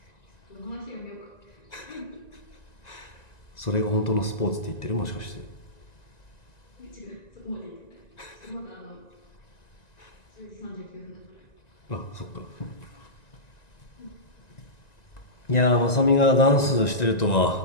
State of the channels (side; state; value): right; late; 1.9 ms